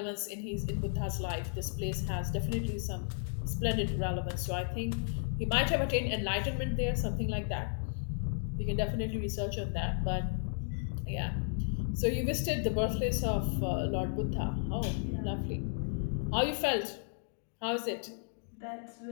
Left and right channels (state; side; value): silent; right; digital silence